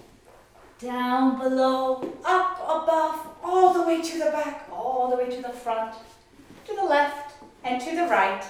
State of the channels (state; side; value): identical; both; correlation 1.00